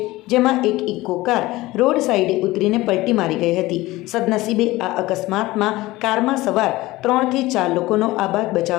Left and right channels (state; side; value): quieter; right; 18.9 dB